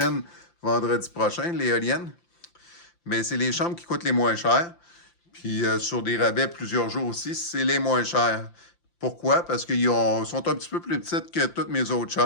vendredi prochain, l'éolienne. Mais c'est les chambres qui coûtent les moins chères. Puis sur des rabais plusieurs jours aussi, c'est les moins chers. Pourquoi? Parce qu'ils sont un petit peu plus petites que toutes mes autres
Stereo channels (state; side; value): late; right; 5.8 ms